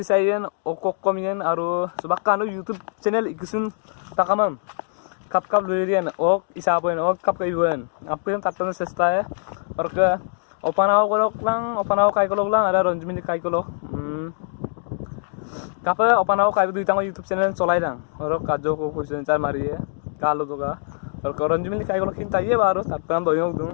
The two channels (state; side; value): silent; right; digital silence